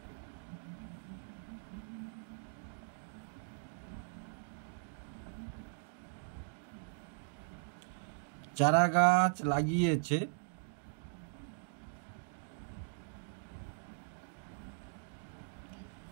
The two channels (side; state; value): left; silent; digital silence